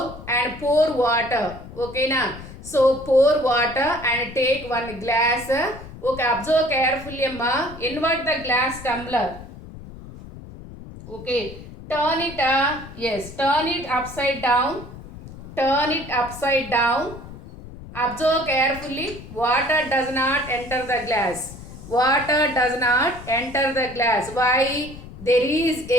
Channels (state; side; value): noise; left; rumble, 15 dB below the sound